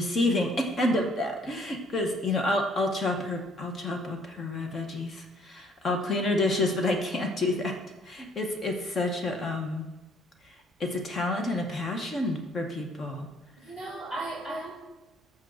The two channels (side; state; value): both; normal; correlation 0.61